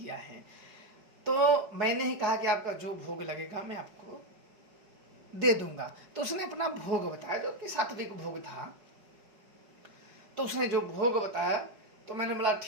है। तो मैंने ही कहा कि आपका जो भोग लगेगा मैं आपको दे दूंगा। तो उसने अपना भोग बताया जो कि सात्विक भोग था। तो उसने जो भोग बताया तो मैंने बोला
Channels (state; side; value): late; left; 4.8 ms